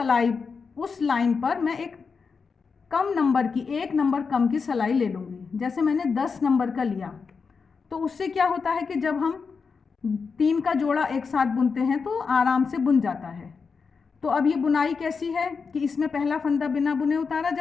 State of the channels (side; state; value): right; quieter; 5.2 dB